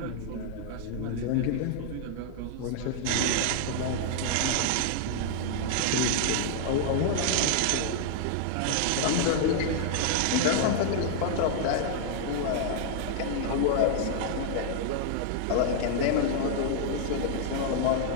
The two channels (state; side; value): different; both; correlation -0.01